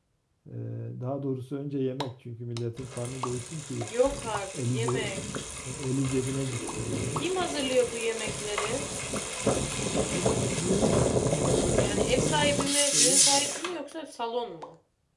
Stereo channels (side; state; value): both; identical; correlation 1.00